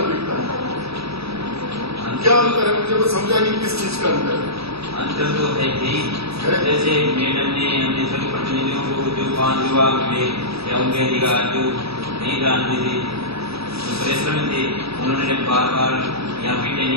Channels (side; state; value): left; late; 0.77 ms